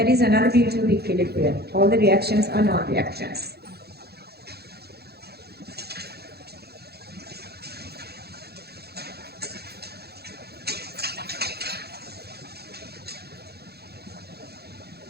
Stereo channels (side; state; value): left; late; 0.46 ms